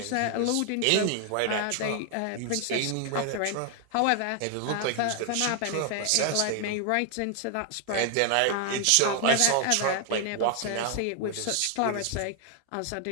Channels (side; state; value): both; different; correlation 0.00